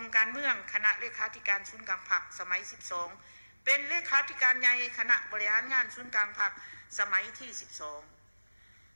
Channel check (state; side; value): inverted; both; correlation -1.00